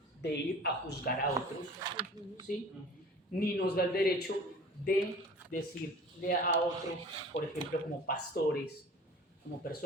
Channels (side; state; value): both; normal; correlation 0.43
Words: de ir a juzgar a otros, ¿sí? Ni nos da el derecho de decirle a otros, por ejemplo, como pastores, como